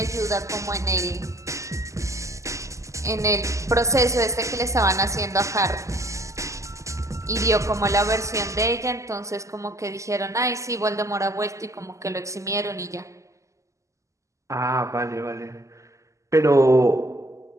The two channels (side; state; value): left; late; 0.15 ms